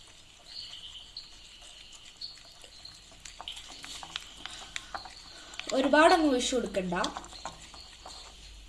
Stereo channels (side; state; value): both; identical; correlation 1.00